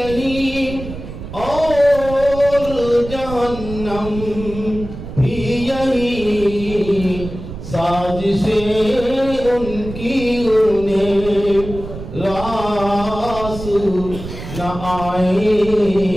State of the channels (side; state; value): right; noise; rumble, 10 dB below the sound